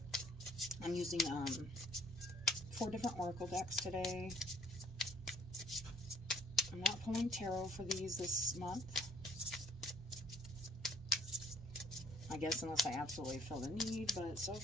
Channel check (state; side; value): normal; both; correlation 0.60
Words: I'm using 4 different oracle decks today. I'm not pulling tarot for these this month. I guess unless I absolutely feel the need, but so